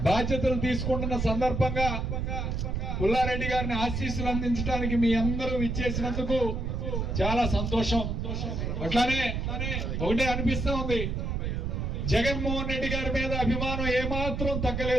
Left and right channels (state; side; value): noise; right; rumble, 2 dB below the sound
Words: బాధ్యతలు తీసుకుంటున్న సందర్భంగా పుల్లారెడ్డి గారిని ఆశీస్సులు అందించడానికి మీ అందరూ ఇచ్చేసినందుకు చాలా సంతోషం. అట్లానే ఒకటే అనిపిస్తా ఉంది, జగన్మోహన్ రెడ్డి గారి మీద అభిమానం ఏమాత్రం